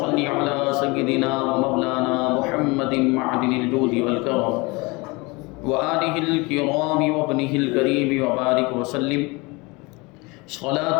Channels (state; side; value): quieter; right; 25.7 dB